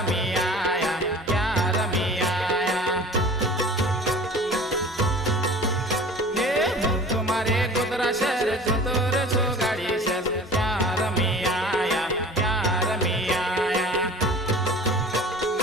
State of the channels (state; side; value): normal; both; correlation 0.42